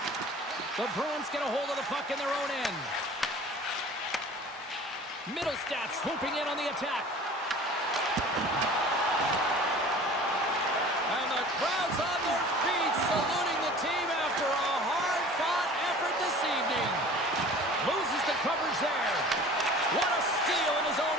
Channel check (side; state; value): both; normal; correlation 0.44